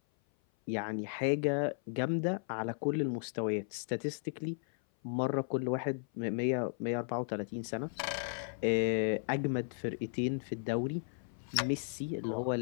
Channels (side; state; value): right; silent; 54 dB below the other